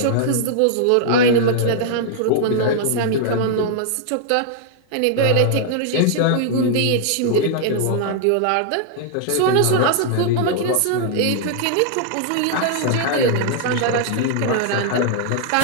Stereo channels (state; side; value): different; both; correlation -0.01